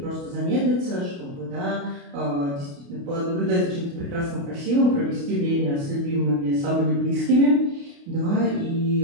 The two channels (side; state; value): left; late; 28 ms